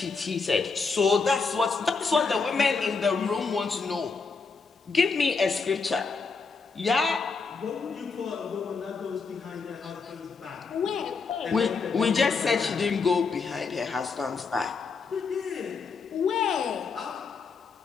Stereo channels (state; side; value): quieter; right; 4.8 dB